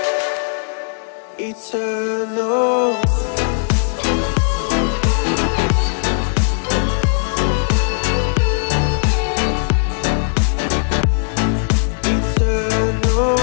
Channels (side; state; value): right; silent; 62 dB below the other